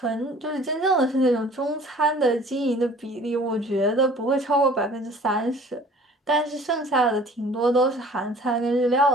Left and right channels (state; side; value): normal; both; correlation 0.50